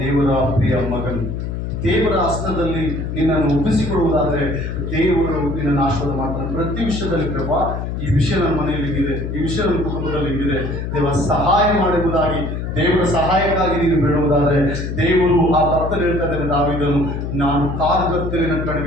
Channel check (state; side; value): noise; left; hum, 4 dB below the sound